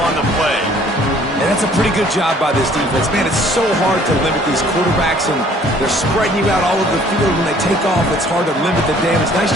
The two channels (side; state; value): both; normal; correlation 0.57